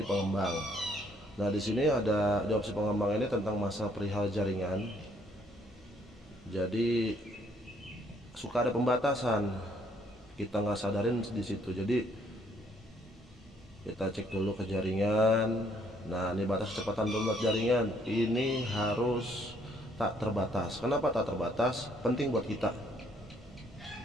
pengembang. Nah, di sini ada di opsi pengembang ini tentang masa perihal jaringan. Jadi suka ada pembatasan, kita nggak sadarin di situ. Jadi kita cek dulu ke jaringan. Nah, ini batas kecepatan download jaringan ini harus tak terbatas. Kenapa tak terbatas? Penting buat kita.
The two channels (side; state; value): both; normal; correlation 0.66